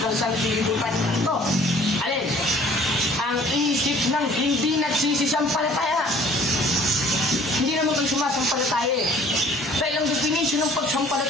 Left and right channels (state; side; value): normal; both; correlation 0.53